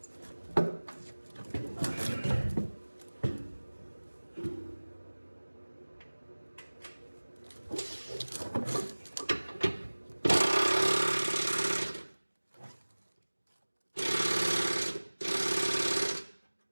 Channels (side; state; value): both; inverted; correlation -1.00